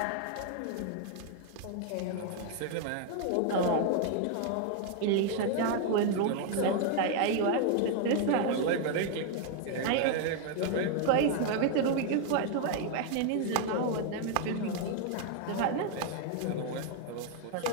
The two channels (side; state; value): both; different; correlation 0.00